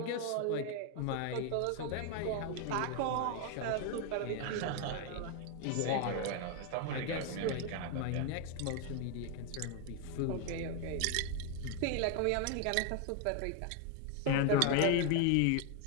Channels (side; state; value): both; different; correlation 0.01